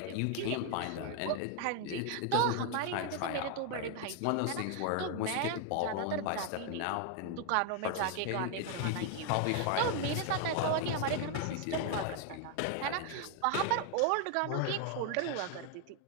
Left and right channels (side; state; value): both; different; correlation 0.01